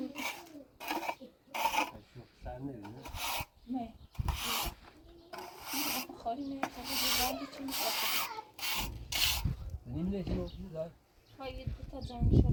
سر نمیده؟ نه خالی میاد تا چی میشه نمیده چی مفید ها یه دو تا جان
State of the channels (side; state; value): both; identical; correlation 1.00